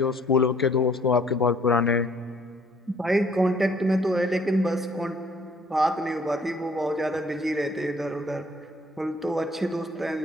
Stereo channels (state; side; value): normal; both; correlation 0.60